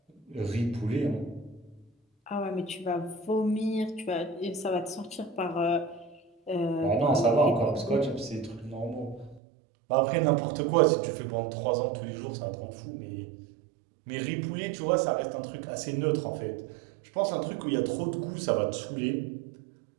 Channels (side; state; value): left; drops out; at 9.4 s